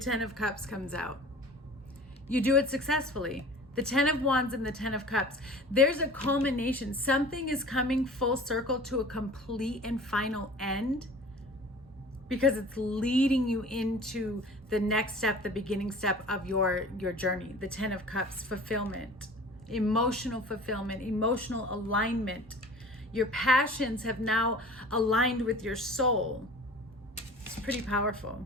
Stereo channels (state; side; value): normal; both; correlation 0.43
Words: of Cups comes out. You do it successfully. The 10 of Wands and the 10 of Cups. There's a culmination. Something is coming full circle to a complete and final end, because it's leading you into the next step, the beginning step of your journey. The 10 of Cups, fulfillment, emotional fulfillment, emotional alignment. Your passions have now aligned with your soul. It's pretty powerful.